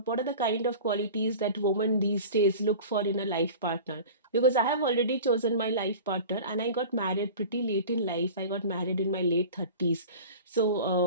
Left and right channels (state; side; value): inverted; both; correlation -0.37